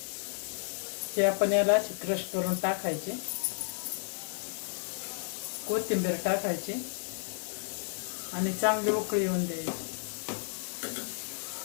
हे आपण याला अशी क्रश करून टाकायची. कोथिंबीर टाकायची आणि चांगली उकळी येऊन द्यायची.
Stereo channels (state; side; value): silent; right; digital silence